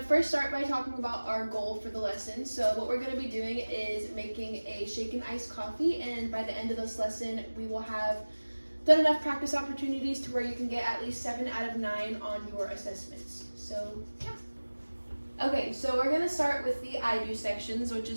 to first start by talking about our goal for the lesson. So what we're going to be doing is making a shaken iced coffee, and by the end of this lesson, we will have done enough practice opportunities to where you can get at least 7 out of 9 on your assessments. So yeah. Okay, so we're going to start with the I do sections, which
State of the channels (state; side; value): inverted; both; correlation -1.00